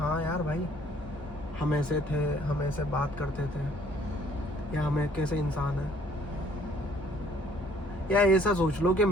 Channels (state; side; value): normal; both; correlation 0.60